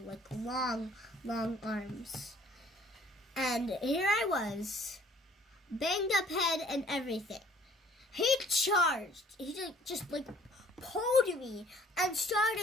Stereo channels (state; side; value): normal; both; correlation 0.57